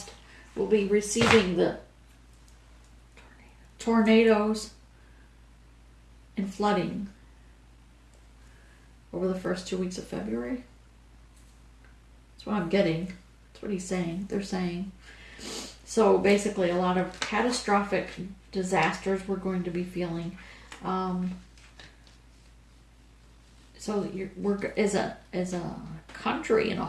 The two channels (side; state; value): both; identical; correlation 1.00